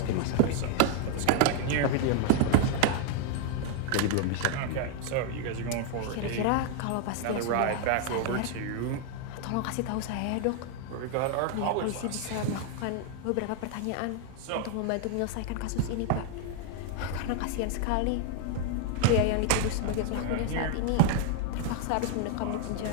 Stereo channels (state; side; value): different; both; correlation 0.00